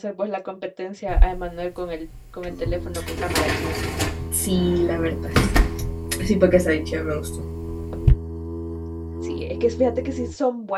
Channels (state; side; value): identical; both; correlation 1.00